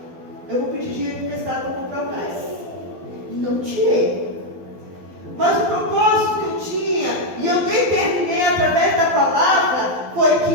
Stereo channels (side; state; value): left; late; 12 ms